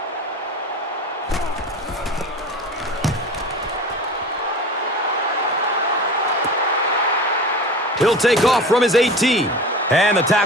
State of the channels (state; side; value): normal; both; correlation 0.34